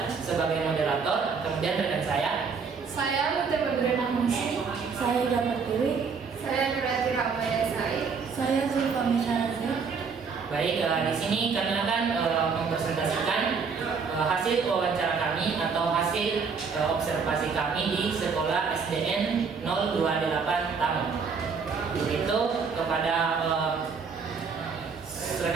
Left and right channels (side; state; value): left; quieter; 5.5 dB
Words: sebagai moderator. Kemudian rekan saya Mutia Badriana Munsi, Saya Damar Dewi. saya Nurati Ramaya Said, Saya Zulfami Syahrazad. Baik, di sini kami akan mempresentasikan hasil wawancara kami atau hasil observasi kami di sekolah SDN 028 Tamu. Itu kepada